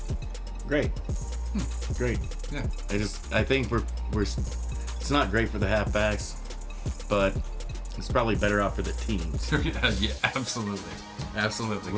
Great. Great. Yeah. I think we're it's not great for the halfbacks, but it's probably better off for the teams. Yeah, absolutely.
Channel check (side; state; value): both; identical; correlation 1.00